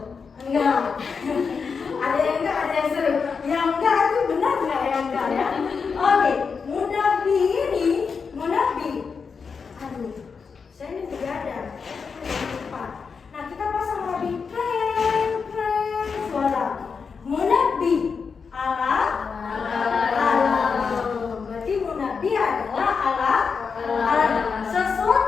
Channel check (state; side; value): quieter; right; 5.5 dB